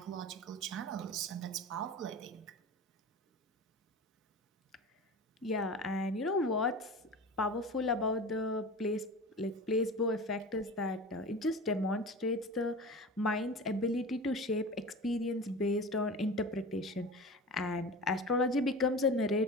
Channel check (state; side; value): normal; both; correlation 0.33